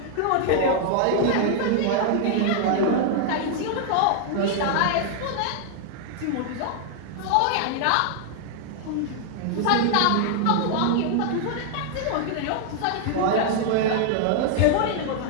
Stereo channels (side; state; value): both; different; correlation 0.00